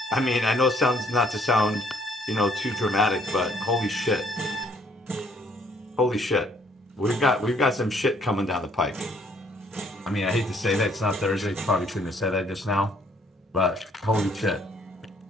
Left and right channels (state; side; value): normal; both; correlation 0.64